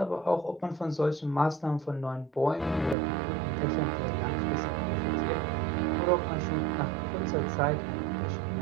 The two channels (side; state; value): left; drops out; at 3.0 s